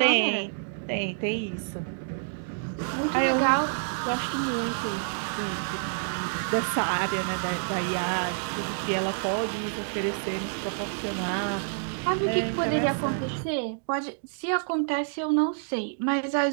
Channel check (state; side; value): silent; left; digital silence